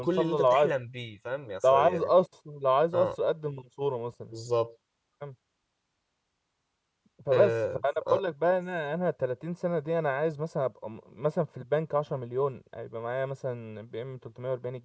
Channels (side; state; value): both; identical; correlation 1.00